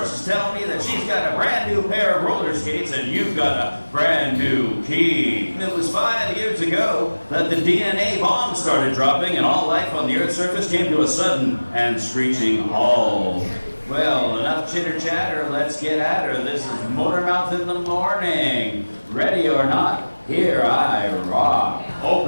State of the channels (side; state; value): both; inverted; correlation -1.00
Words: tell me that she's got a brand new pair of roller skates and you've got a brand new key. It was 5 years ago that the DNA bomb started dropping and all life on the Earth's surface came to a sudden and screeching halt. Well, enough chitter-chatter, let's get at her. This is Motormouth in the morning. Ready or not, here I rock.